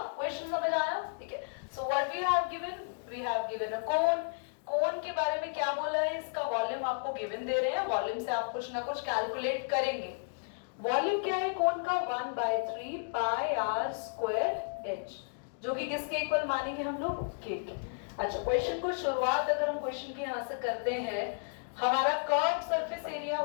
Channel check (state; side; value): silent; right; digital silence